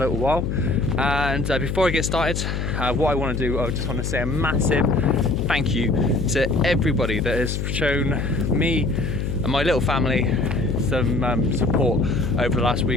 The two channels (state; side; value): noise; left; hum, 2 dB below the sound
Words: while. And before I get started, what I want to do, I just want to say a massive thank you to everybody that has shown me and my little family some support over the last